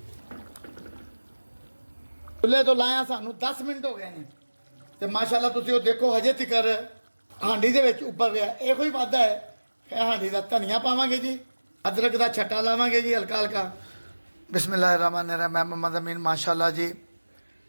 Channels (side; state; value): both; inverted; correlation -1.00